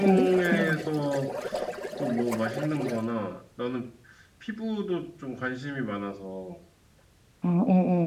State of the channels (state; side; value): identical; both; correlation 1.00